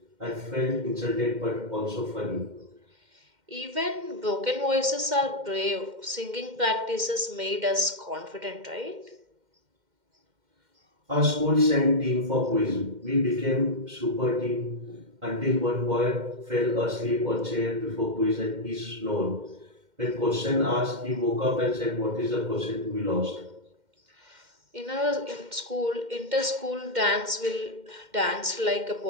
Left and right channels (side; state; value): left; late; 2.1 ms